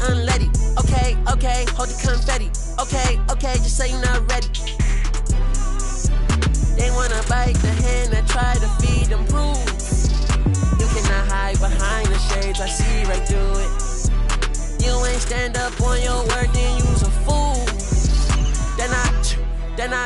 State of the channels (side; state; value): both; identical; correlation 1.00